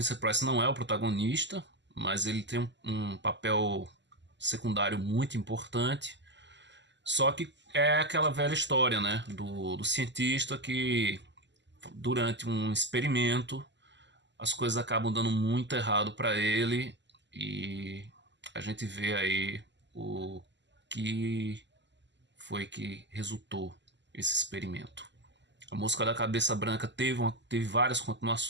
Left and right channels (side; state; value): left; late; 0.52 ms